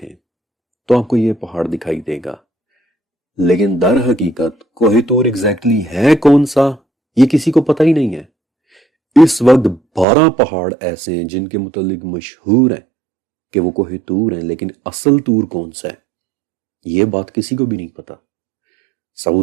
تو آپ کو یہ پہاڑ دکھائی دے گا، لیکن در حقیقت کوہ طور ایگزیکٹلی ہے کون سا یہ کسی کو پتہ ہی نہیں ہے۔ اس وقت 12 پہاڑ ایسے ہیں جن کے متعلق مشہور ہیں کہ وہ کوہ طور ہیں، لیکن اصل طور کون سا ہے یہ بات کسی کو بھی نہیں پتا۔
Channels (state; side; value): drops out; left; at 10.1 s